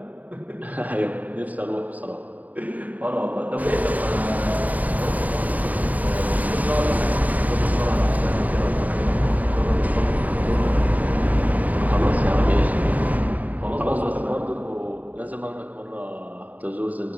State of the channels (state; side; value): late; left; 0.075 ms